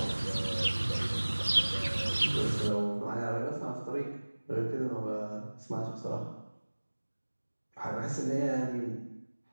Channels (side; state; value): both; inverted; correlation -1.00